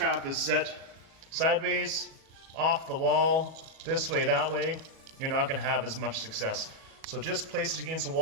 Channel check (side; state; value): left; late; 37 ms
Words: is set sideways, off the wall, this way, that way, you're not gonna have as much success. So just place it against the